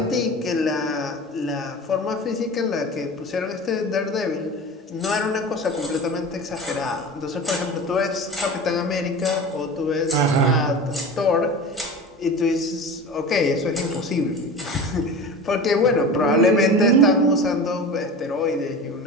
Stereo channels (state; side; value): normal; both; correlation 0.33